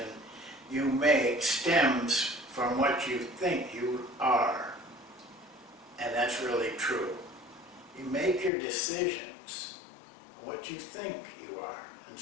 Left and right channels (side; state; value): right; drops out; at 8.5 s